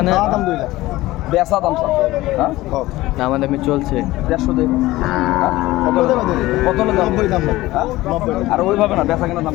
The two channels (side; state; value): right; quieter; 17.8 dB